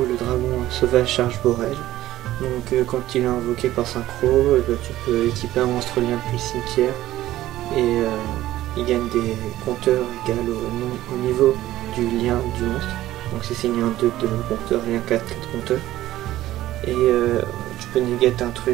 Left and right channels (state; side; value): quieter; left; 14.8 dB